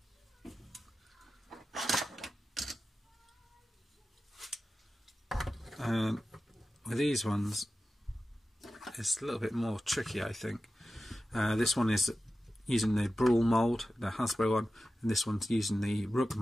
With these ones, it's a little bit more tricky, I think. This one is using the Brawl mould, the Hasbro one, and this one's using the Rook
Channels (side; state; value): both; normal; correlation 0.94